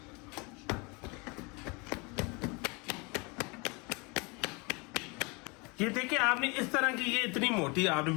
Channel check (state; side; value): quieter; right; 28.8 dB